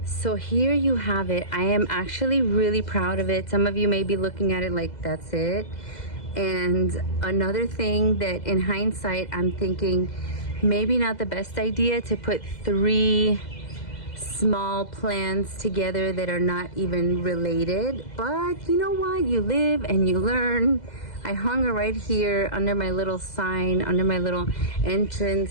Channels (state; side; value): late; right; 2.0 ms